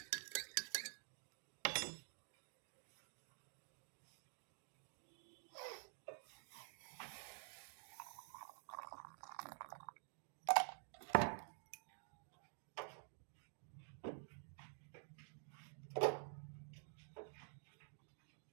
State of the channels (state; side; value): silent; left; digital silence